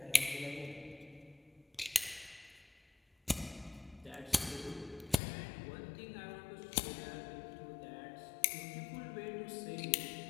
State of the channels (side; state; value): right; drops out; at 5.2 s